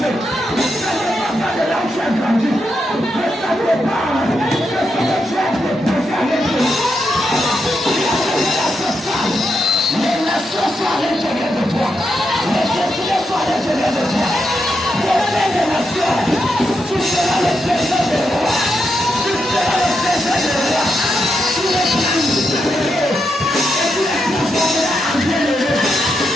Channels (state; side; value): normal; both; correlation 0.83